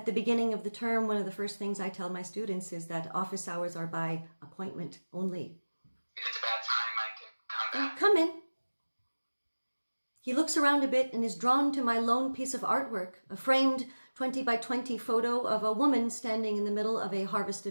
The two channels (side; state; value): both; inverted; correlation -1.00